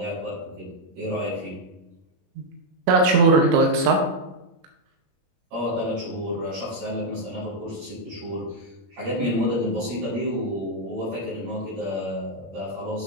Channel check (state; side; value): late; left; 21 ms